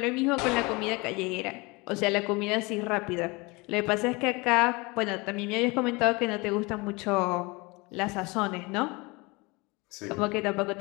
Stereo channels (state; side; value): quieter; right; 25.8 dB